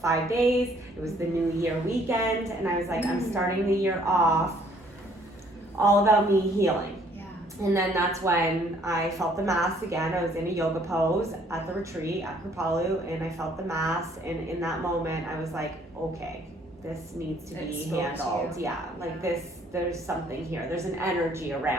days. It was the New Year weekend, and I was like, I'm starting the year off all about me healing. And then that's when I felt the mass again. I was in a yoga pose at the retreat at Kripalu, and I felt the mass. And in that moment, I was like, okay, this needs to It be spoke to handled. you. Yeah, like Yeah. this, there's something here. There's an energy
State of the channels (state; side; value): normal; both; correlation 0.62